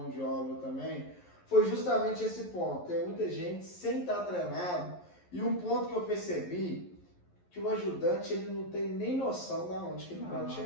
de obra também, foi justamente esse ponto. Tem muita gente sem estar treinado, e um ponto que eu percebi, que o ajudante ele não tem nem noção de onde que ele pode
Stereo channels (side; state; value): right; late; 11 ms